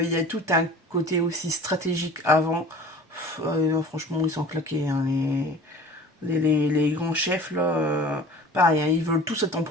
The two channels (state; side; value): normal; both; correlation 0.43